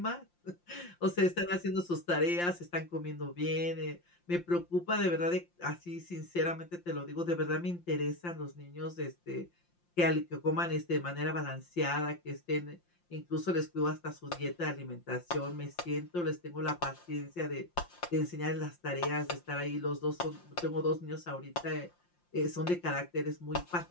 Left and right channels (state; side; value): late; right; 5.7 ms